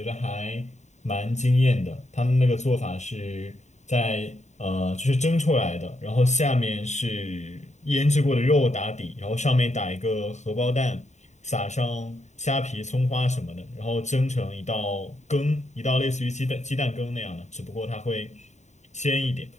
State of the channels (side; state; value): right; late; 0.34 ms